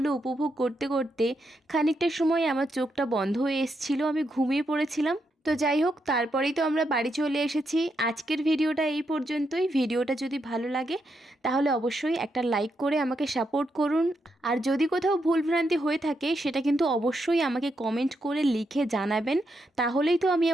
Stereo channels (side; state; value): both; normal; correlation 0.81